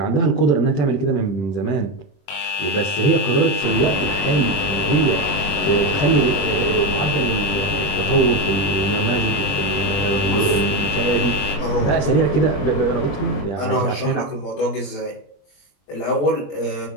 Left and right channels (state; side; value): late; right; 21 ms